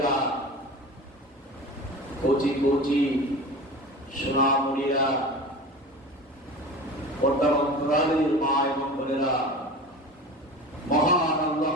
কোচি কোচি সোনামণিরা পর্দার অন্তরালের মা এবং বোনেরা মহান আল্লাহ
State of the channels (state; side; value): normal; both; correlation 0.34